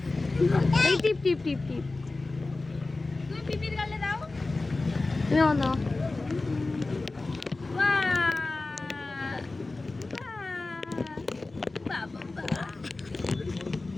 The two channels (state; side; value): quieter; right; 3.3 dB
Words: এই টিপ টিপ টিপ টিপ। তুমি পিপির গালে দাও। তুমি আমার দাও। বাহ বাহ।